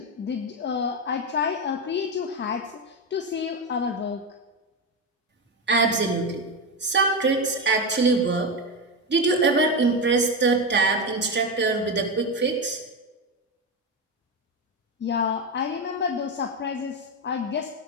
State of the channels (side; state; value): both; normal; correlation 0.13